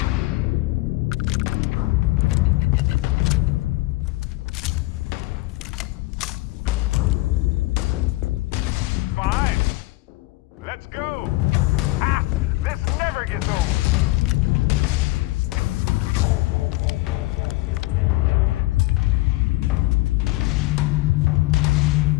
Fine. Let's go. Ah, this never gets old.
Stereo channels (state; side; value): quieter; right; 20.3 dB